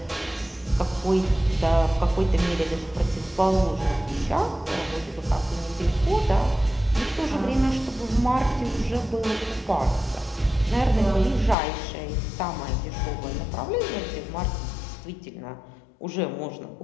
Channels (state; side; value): drops out; right; at 11.6 s